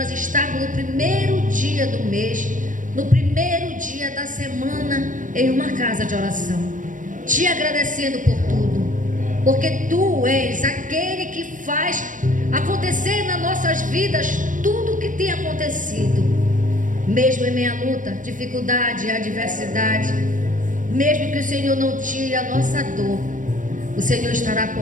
estarmos no primeiro dia do mês, no primeiro dia da semana, em uma casa de oração, Te agradecendo por tudo, porque Tu és aquele que faz acontecer nas nossas vidas tudo o que tem acontecido, mesmo em meia luta, dificuldade, adversidade, mesmo que o Senhor não tire a nossa dor, o Senhor estará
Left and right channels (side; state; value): left; late; 0.38 ms